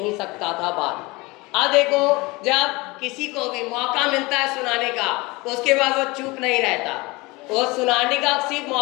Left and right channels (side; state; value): right; quieter; 23.6 dB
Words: सकता था बात। अब देखो जब किसी को भी मौका मिलता है सुनाने का उसके बाद वो चुप नहीं रहता। वो सुनाने का सिर्फ